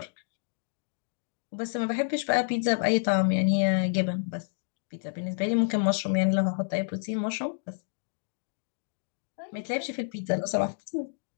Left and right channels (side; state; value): right; silent; digital silence